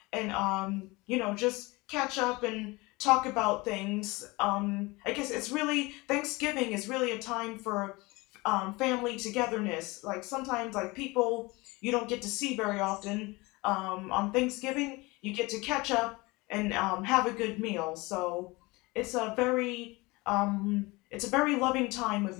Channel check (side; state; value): right; quieter; 23.5 dB